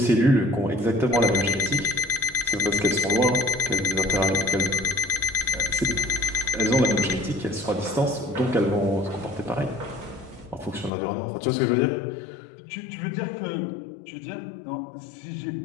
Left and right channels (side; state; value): right; drops out; at 10.9 s